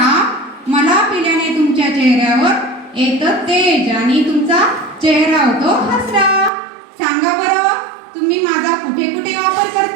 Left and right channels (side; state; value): left; drops out; at 6.5 s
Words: मला पिल्याने तुमच्या चेहऱ्यावर येतं तेज आणि तुमचा चेहरा होतो हसरा. सांगा बरं, तुम्ही माझा कुठे कुठे वापर